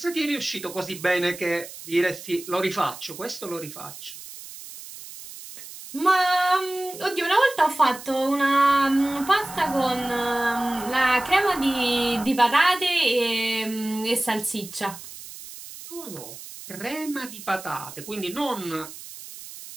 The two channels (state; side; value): noise; right; hiss, 14 dB below the sound